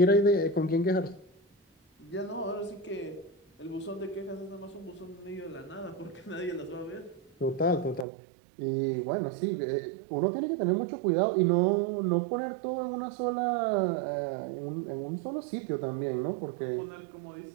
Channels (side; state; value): left; drops out; at 8.1 s